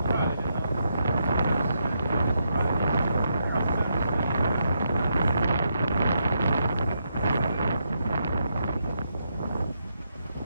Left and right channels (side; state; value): both; inverted; correlation -0.81